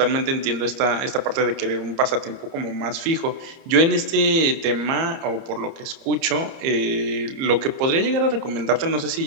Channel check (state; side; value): late; left; 30 ms